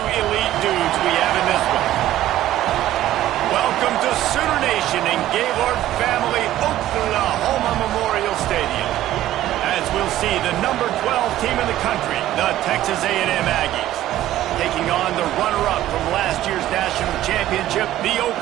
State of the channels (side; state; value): left; quieter; 13.7 dB